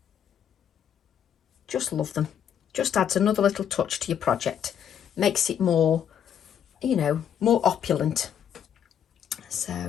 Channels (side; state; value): right; quieter; 8.9 dB